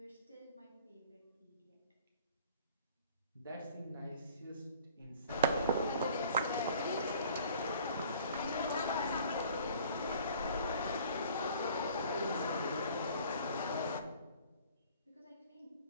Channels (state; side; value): inverted; both; correlation -0.50